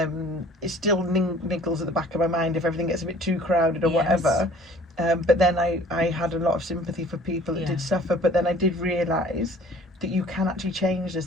It still niggles at the back of my mind if everything gets a bit too crowded or whatever. But then I had a lot of sympathy for people that did suffer. But then I did realise that you can actually change this.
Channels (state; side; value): normal; both; correlation 0.51